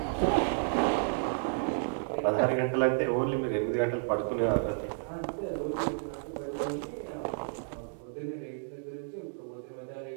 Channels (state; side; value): silent; left; digital silence